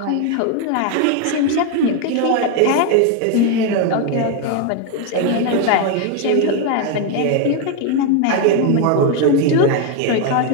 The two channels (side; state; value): both; different; correlation 0.01